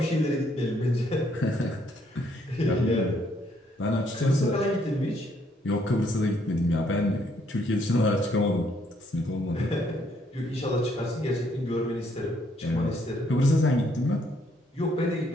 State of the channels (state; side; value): normal; both; correlation 0.69